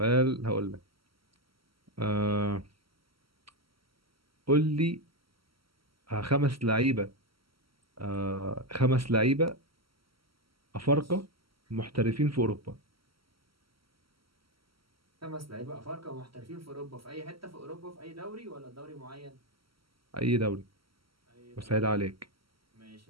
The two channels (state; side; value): late; left; 0.75 ms